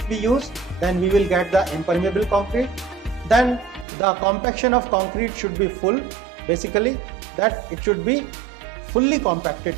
we use, then we will get the impermeable concrete. Then the compaction of concrete should be full basically, that it should be fully compacted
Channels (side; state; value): left; drops out; at 3.9 s